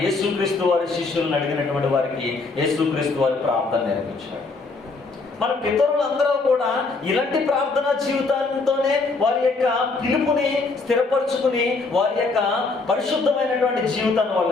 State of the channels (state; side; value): quieter; right; 3.9 dB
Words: యేసుక్రీస్తు వారి శిష్యులను అడిగినటువంటి వారికి యేసుక్రీస్తు వారి ప్రార్థన నేర్పించాడు. మన పితరులందరూ కూడా ఇలాంటి ప్రార్థనా జీవితంతోనే వారి యొక్క పిలుపుని స్థిరపరుచుకుని వారి యొక్క పరిశుద్ధమైనటువంటి జీవితాన్ని